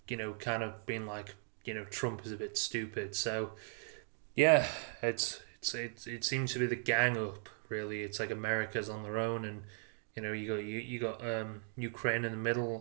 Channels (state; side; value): silent; left; 53 dB below the other